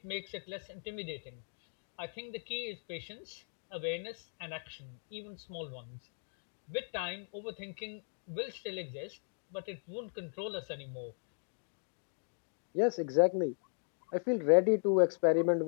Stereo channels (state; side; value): silent; right; digital silence